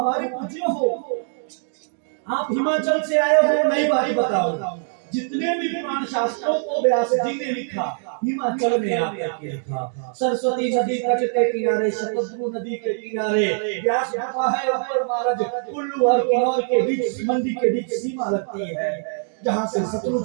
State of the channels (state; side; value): silent; left; digital silence